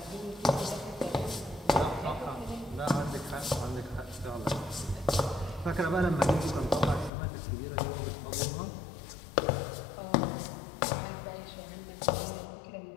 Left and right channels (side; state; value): right; drops out; at 7.1 s